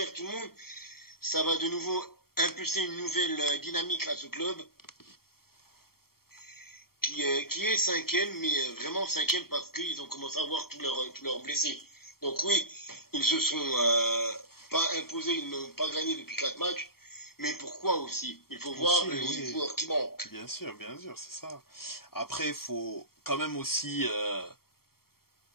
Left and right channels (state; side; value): late; right; 0.94 ms